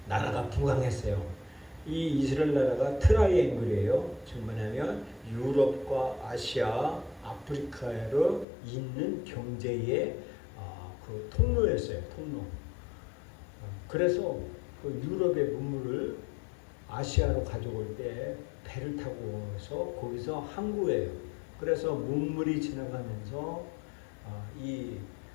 나라가 부강했어요. 이 이스라엘 나라가 트라이앵글이에요. 지금 뭐냐면 유럽과 아시아, 아프리카로 있는 경제의 그 통로였어요. 통로. 그래서 그 유럽의 문물을 아시아로 가져올 때 배를 타고 해서 거기서 항구예요. 그래서 문물이 지나가면서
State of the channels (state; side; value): drops out; right; at 8.5 s